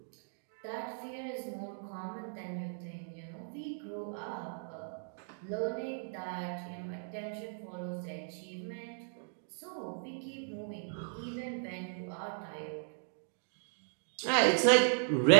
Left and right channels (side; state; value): left; silent; digital silence